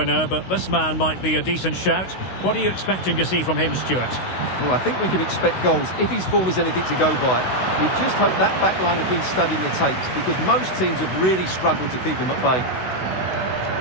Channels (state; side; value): late; right; 16 ms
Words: but this man might be a decent shout. What are you expecting to see from him, Stuart? Well, I think we can expect goals if his form is anything to go by. We just hope that back line have been studying the tapes, because most teams have really struggled to keep him at bay.